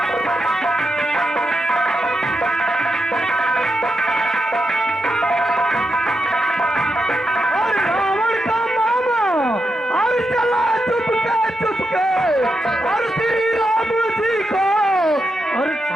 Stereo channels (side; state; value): both; normal; correlation 0.85